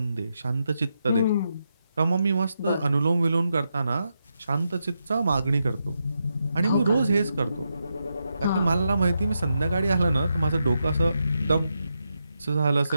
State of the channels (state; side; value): inverted; both; correlation -0.84